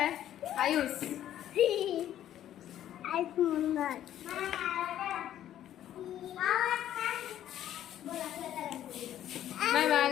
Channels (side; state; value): right; quieter; 11.6 dB